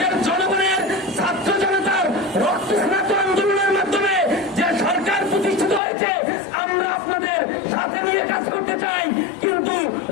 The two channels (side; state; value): right; drops out; at 5.8 s